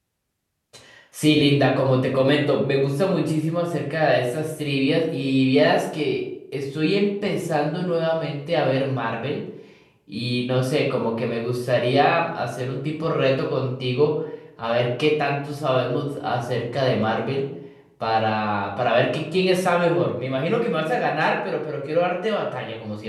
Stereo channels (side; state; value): both; identical; correlation 1.00